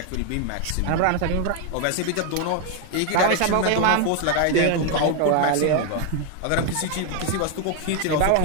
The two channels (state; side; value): different; both; correlation 0.01